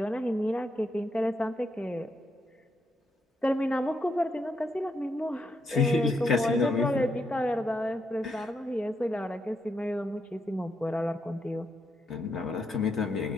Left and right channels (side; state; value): both; normal; correlation 0.80